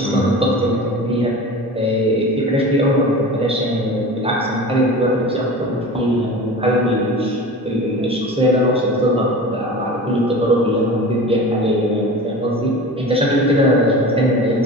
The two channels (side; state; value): both; normal; correlation 0.34